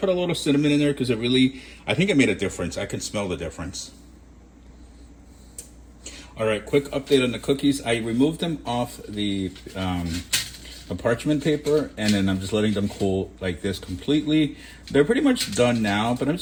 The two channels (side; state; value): both; identical; correlation 1.00